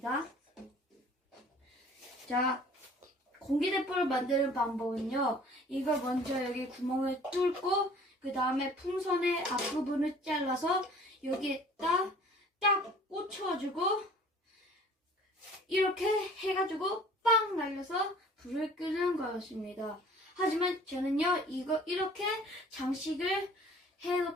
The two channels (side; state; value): both; normal; correlation 0.51